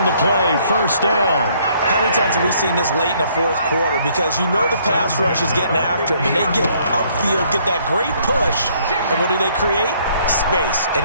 the play, 1st down. How many times have we seen this late in the 4th quarter? Because you know the pass rush is getting after him, and they get upfield, get that great push, and what do they create? Space, and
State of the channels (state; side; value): inverted; both; correlation -0.65